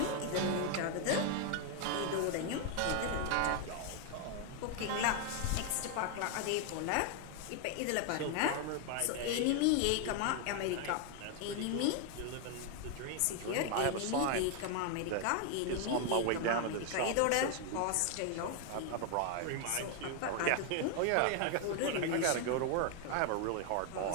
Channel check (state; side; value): different; both; correlation 0.01